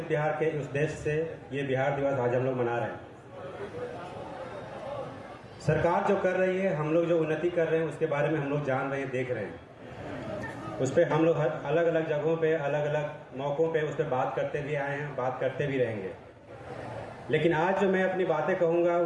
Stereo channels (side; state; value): both; identical; correlation 1.00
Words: बिहार के उद्देश्य से ये बिहार दिवस आज हम लोग मना रहे हैं। सरकार जो कर रही है, हम लोग जो उन्नति कर रहे हैं, उसके बारे में हम लोग जान रहे हैं, देख रहे हैं। उस पर हम लोग हर अलग अलग जगहों पे, अलग अलग मौक़ों पे उस पर बात करते भी आए हैं, बात करते भी रहेंगे। लेकिन आज जो मैं अपनी बातें कहूँगा